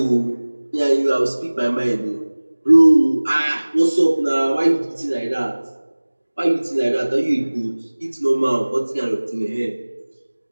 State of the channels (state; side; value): inverted; both; correlation -1.00